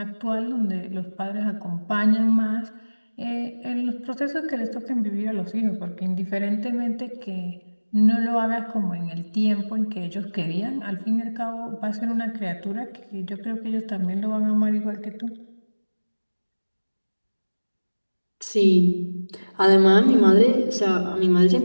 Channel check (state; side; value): inverted; both; correlation -1.00